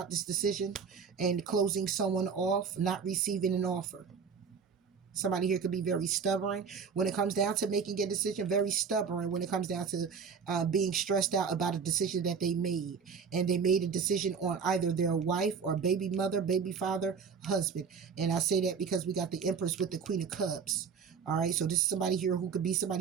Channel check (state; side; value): quieter; left; 6.0 dB